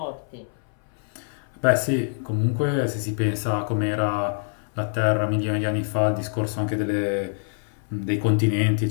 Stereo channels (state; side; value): silent; right; 57 dB below the other